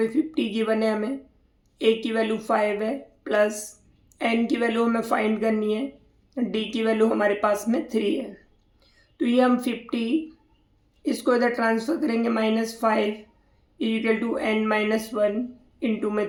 50 गिवन है, हमें ए की वैल्यू 5 है प्लस एन की वैल्यू हमें फाइंड करनी है, डी की वैल्यू हमारे पास में 3 है। तो ये हम 50 इसको इधर ट्रांसफ़र करेंगे, -5 equal to N minus one into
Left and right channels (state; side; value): identical; both; correlation 1.00